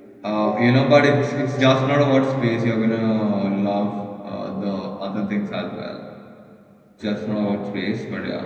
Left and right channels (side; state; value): both; identical; correlation 1.00